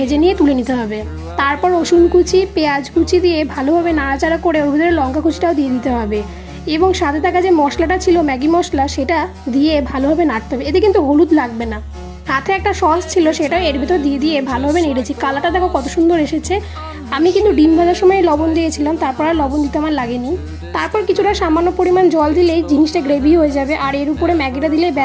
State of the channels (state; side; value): identical; both; correlation 1.00